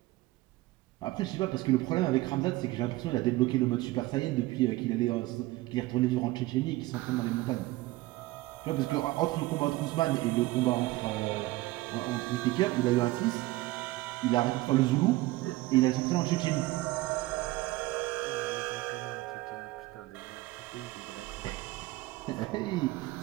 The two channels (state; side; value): quieter; left; 19.1 dB